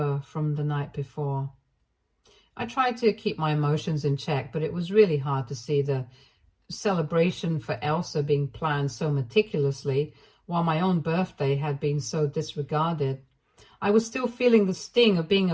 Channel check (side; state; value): both; identical; correlation 1.00